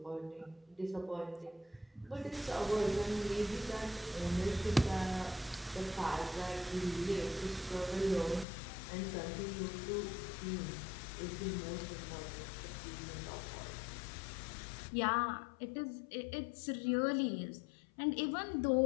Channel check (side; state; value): right; drops out; at 8.5 s